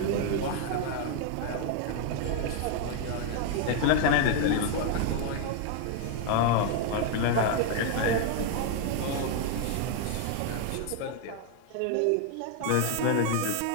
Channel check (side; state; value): both; different; correlation 0.00